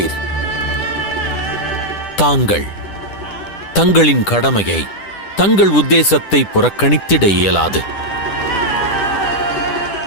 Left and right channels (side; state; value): right; late; 10 ms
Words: தாங்கள் தங்களின் கடமையை, தங்கள் உத்தேசத்தை புறக்கணித்திட இயலாது.